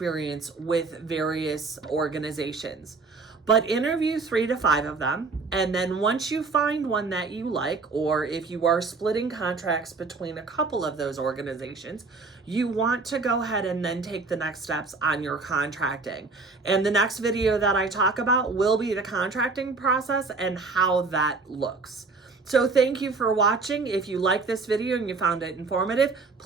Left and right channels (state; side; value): quieter; left; 4.2 dB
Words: with various organizations. But interview 3 to 5 of them, and then once you find one that you like, or if you are splitting contracts between a couple of those organizations, you want to go ahead and then take the next steps on your contracting. And the next video that I talk about will be the contracting process and how that looks. So thank you for watching. If you like this video and you found it informative,